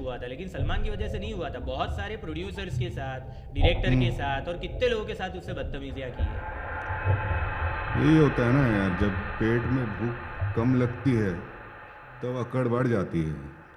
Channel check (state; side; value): identical; both; correlation 1.00